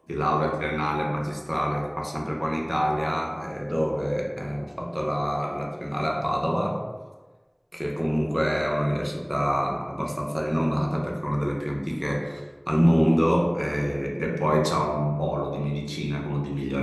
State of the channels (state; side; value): identical; both; correlation 1.00